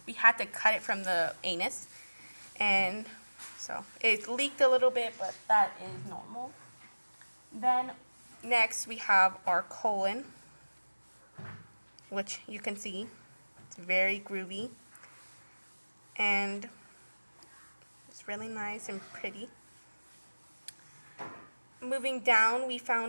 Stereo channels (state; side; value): inverted; both; correlation -1.00